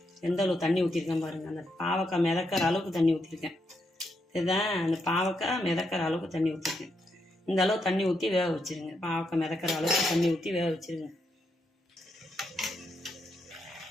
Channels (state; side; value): normal; both; correlation 0.80